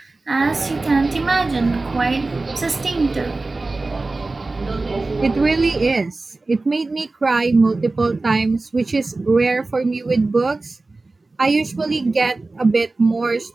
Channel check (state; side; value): quieter; left; 3.3 dB